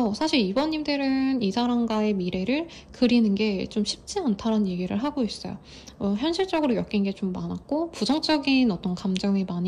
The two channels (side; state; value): both; identical; correlation 1.00